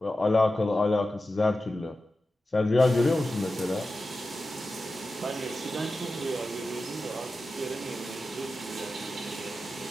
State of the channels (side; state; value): both; normal; correlation 0.93